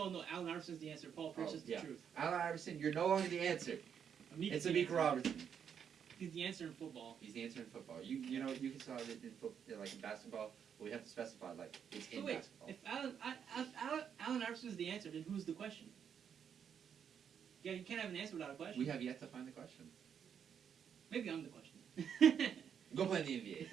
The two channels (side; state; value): left; quieter; 7.9 dB